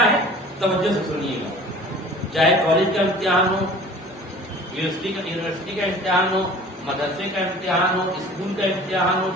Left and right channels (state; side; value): normal; both; correlation 0.45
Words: ہے؟ توجہ سے سنیے گا۔ چاہے کالج کا امتحان ہو، یونیورسٹی کا امتحان ہو، مدرسے کا امتحان ہو، اسکول کا امتحان ہو،